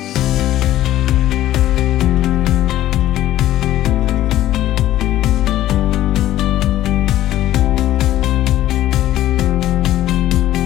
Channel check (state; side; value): quieter; right; 13.8 dB